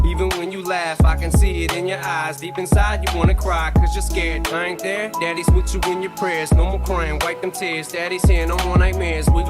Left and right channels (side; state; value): both; identical; correlation 1.00